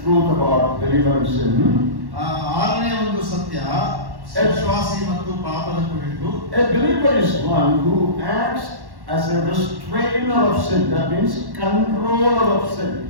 truth about believer and sin. ಆರನೇ ಒಂದು ಸತ್ಯ ವಿಶ್ವಾಸಿ ಮತ್ತು ಪಾಪದ ಕುರಿತು. A believer is one who acts as a restrainer of sin. That means controller of sin.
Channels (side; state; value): left; late; 1.1 ms